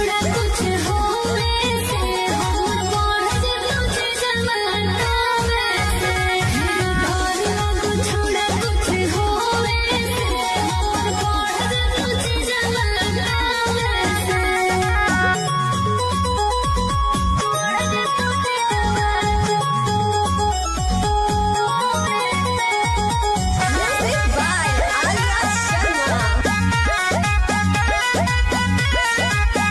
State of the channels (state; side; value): identical; both; correlation 1.00